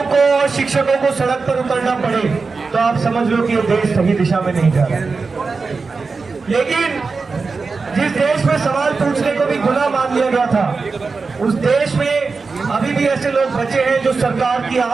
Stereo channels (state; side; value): quieter; left; 4.4 dB